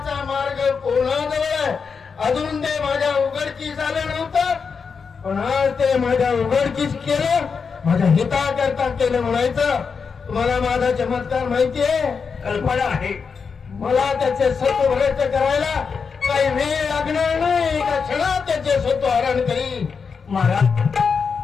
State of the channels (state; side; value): quieter; right; 5.6 dB